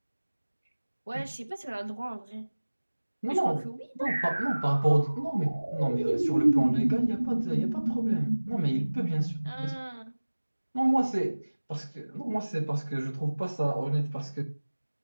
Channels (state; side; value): inverted; both; correlation -1.00